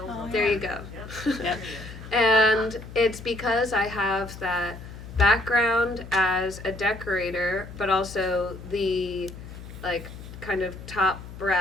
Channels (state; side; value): noise; left; hum, 13 dB below the sound